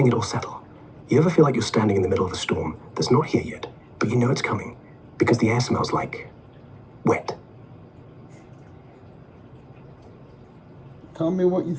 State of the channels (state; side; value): identical; both; correlation 1.00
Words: it all settle. You ever feel like you're standing in the middle of a storm that's not here yet, but you know it's coming because the air smells like wet? Tell me what you